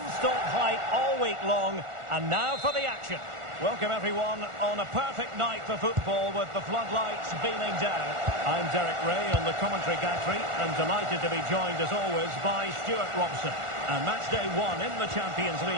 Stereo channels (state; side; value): late; left; 1.4 ms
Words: hype all week long, and now for the action. Welcome everyone on a perfect night for football with the floodlights beaming down. I'm Derek Ray on the commentary gantry and delighted to be joined as always by Stuart Robson. And match day one in the Champions